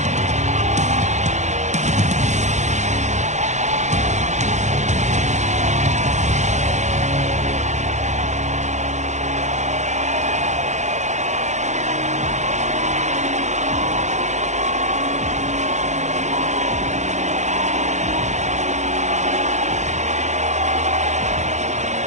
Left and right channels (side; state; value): left; late; 0.34 ms